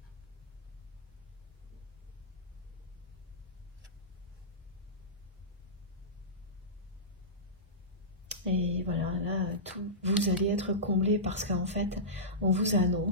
Et voilà, là, vous allez être comblé parce qu'en fait, on vous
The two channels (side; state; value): both; normal; correlation -0.17